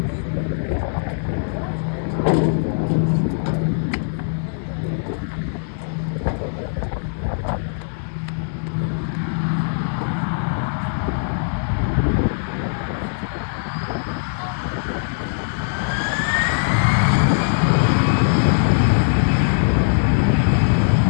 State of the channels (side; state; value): right; silent; digital silence